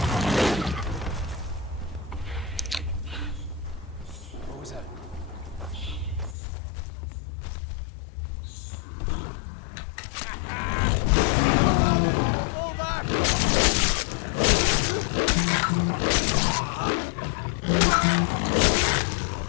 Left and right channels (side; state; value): right; drops out; at 6.4 s